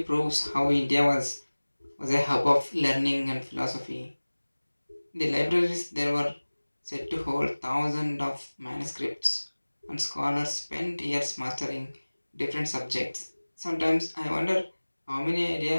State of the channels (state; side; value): inverted; both; correlation -1.00